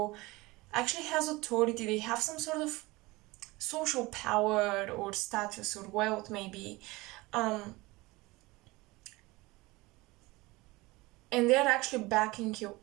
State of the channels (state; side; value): quieter; left; 21.9 dB